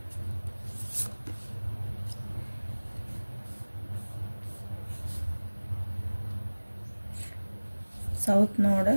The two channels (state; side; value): inverted; both; correlation -1.00